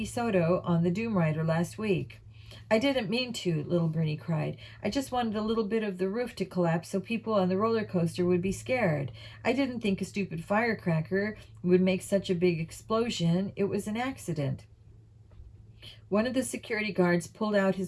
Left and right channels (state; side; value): identical; both; correlation 1.00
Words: Soto on the Doom Rider last week. I didn't mean to, little Bernie cried. I just wanted a little bit of the roof to collapse so people on the roller coaster would be scared. I didn't think a stupid firecracker would make such a big explosion. It was an accident. One of the security guards pulled out